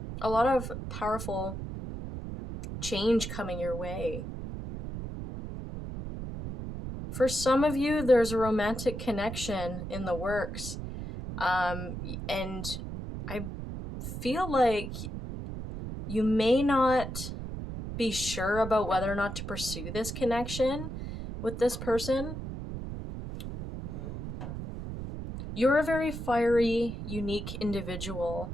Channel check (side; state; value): right; noise; rumble, 7 dB below the sound